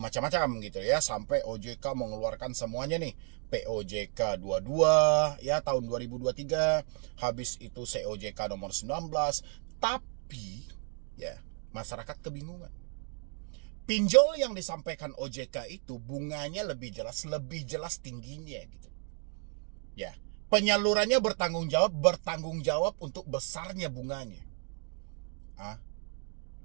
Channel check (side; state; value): left; quieter; 39.5 dB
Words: gitu ya, sampai OJK mengeluarkan semuanya nih. POJK 22 ya tahun 2023, habis itu COJK nomor 19. Tapi ya, masyarakat kebingungan. Pinjol yang disampaikan OJK itu bunganya lebih jelas tingginya gitu. Ya, penyalurannya bertanggung jawab untuk besarnya bunganya.